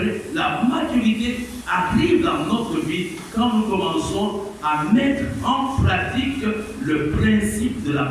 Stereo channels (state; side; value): identical; both; correlation 1.00